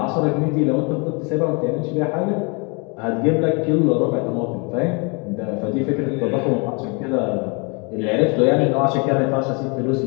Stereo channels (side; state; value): right; quieter; 32.1 dB